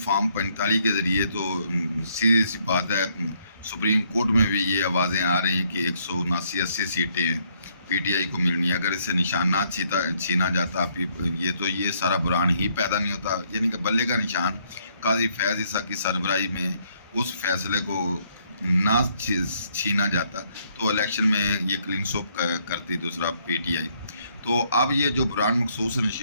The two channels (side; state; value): both; inverted; correlation -0.70